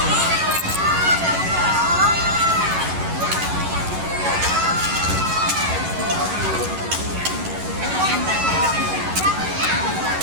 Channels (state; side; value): late; left; 11 ms